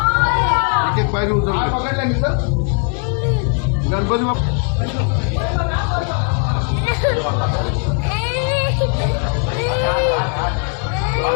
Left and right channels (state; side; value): quieter; right; 39.9 dB